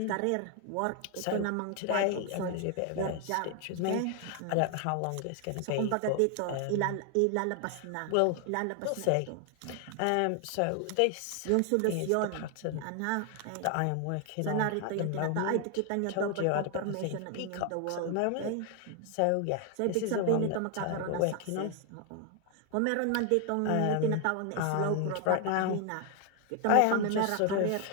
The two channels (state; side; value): different; both; correlation 0.00